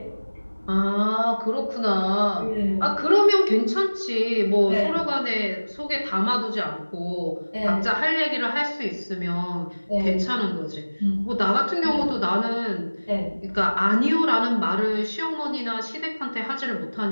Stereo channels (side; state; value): both; inverted; correlation -1.00